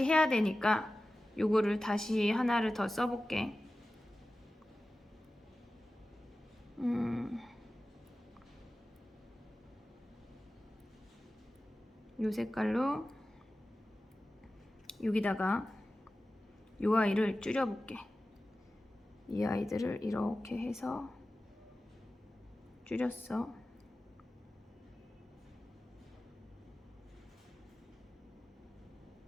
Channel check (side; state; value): both; normal; correlation 0.95